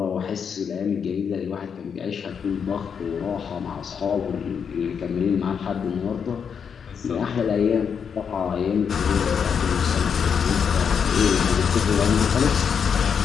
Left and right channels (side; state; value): right; quieter; 6.9 dB